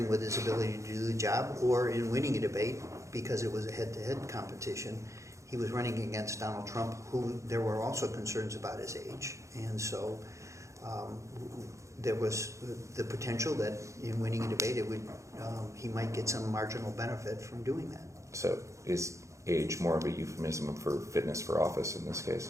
with his ability to do the job, or in winning a debate, because it was a head-to-head competition. He was running against Donald Trump, who there were also concerns about his age. And so there was the potential that in winning a debate, he might get some marginal benefit from doing that. So is age more of a euphemism for fitness for office in this case?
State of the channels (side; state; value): left; late; 0.15 ms